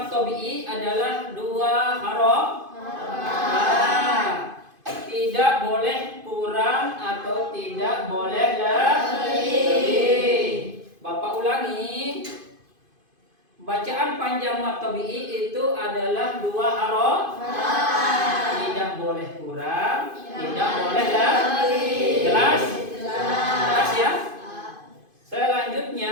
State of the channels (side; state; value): left; late; 2.5 ms